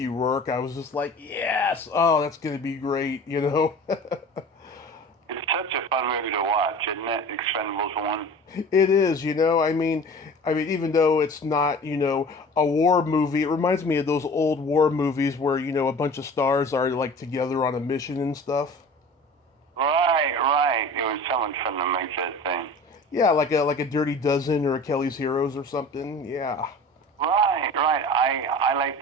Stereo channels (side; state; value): both; normal; correlation 0.40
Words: Rourke. I was just like, yes, oh, that's gonna be great, you know. It's such a fun movie to watch, isn't it? Expendables 1. It is, you know. I mean, even though it's not, you know, a war movie, it reminds me of those old war movies where, you know, a bunch of stars are like together on a mission and stuff. Right. was someone fun to make that thing. Yeah, like a Dirty Dozen or a Kelly's Heroes or something. Yeah. Right. I